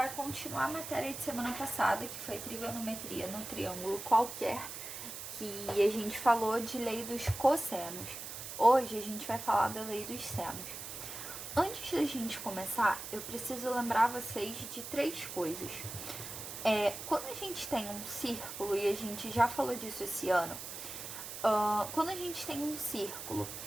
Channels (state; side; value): noise; right; hiss, 8 dB below the sound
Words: continuar a matéria de semana passada, que foi trigonometria no triângulo qualquer, que a gente falou de lei dos cossenos. Hoje a gente vai falar da lei dos senos. Antes da gente começar, eu preciso lembrar vocês de três coisas. Quando a gente tem um círculo, e a gente já falou disso esse ano, quando a gente tem um círculo